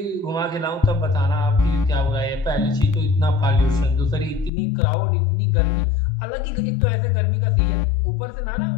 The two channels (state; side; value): drops out; right; at 4.5 s